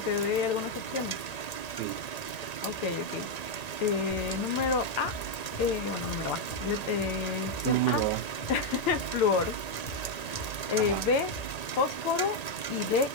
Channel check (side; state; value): right; late; 1.8 ms